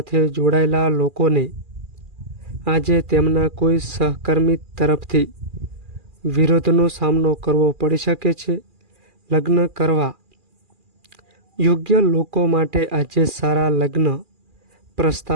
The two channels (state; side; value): late; left; 2.4 ms